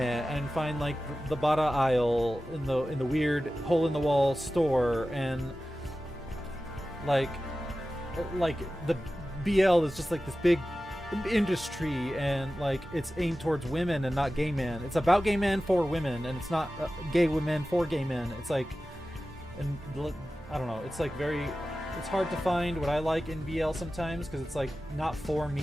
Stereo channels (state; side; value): normal; both; correlation 0.95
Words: find like the Bara aisle in the weird hole in the wall store, and like the BL is just like this big industry, and like it's aimed towards women and not gay men. It's about gay men for women, and it's not gay women for gay men. It's like, and I don't know, it's like very, it's hard to find what I like in BL sometimes, because it's like not for